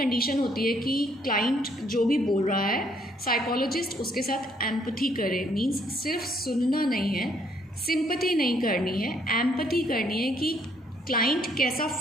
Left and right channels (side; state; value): both; normal; correlation 0.68